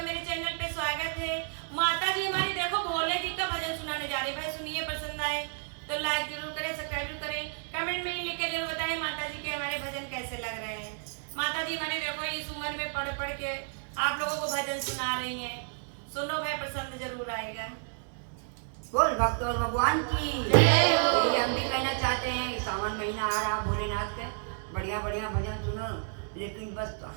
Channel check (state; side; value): silent; left; digital silence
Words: मेरे चैनल पे स्वागत है। माता जी हमारी देखो भोले जी का भजन सुनाने जा रही है। भाई सुनिए, पसंद आए तो लाइक जरूर करें, सब्सक्राइब जरूर करें, कमेंट में लिख के जरूर बताएं माता जी के हमारे भजन कैसे लग रहे हैं। माता जी हमारी देखो इस उम्र में पढ़ पढ़ के आप लोगों को भजन सुना रही हैं। सुनो भाई, पसंद जरूर आएगा। बोल भक्त और भगवान की जय हो। यही हम भी कहना चाहते हैं कि सावन महीना आ रहा, भोलेनाथ के बढ़िया बढ़िया भजन सुनो। लेकिन बस